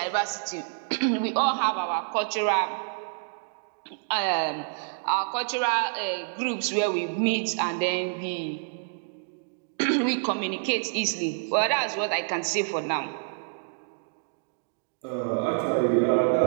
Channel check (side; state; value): left; silent; digital silence